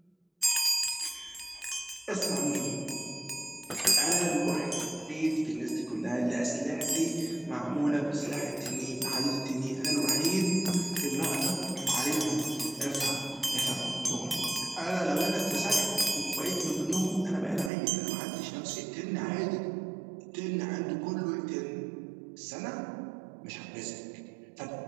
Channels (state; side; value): drops out; left; at 17.7 s